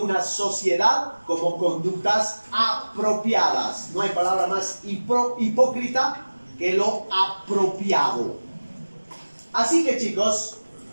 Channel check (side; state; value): both; inverted; correlation -1.00